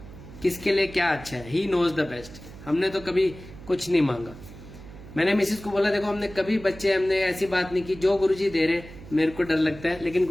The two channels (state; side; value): noise; right; hum, 16 dB below the sound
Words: किसके लिए क्या अच्छा है। He knows the best. हमने तो कभी कुछ नहीं मांगा। मैंने मिसेज को बोला देखो हमने कभी हमने ऐसी बात नहीं की, जो गुरुजी दे रहे मेरे को डर लगता है, लेकिन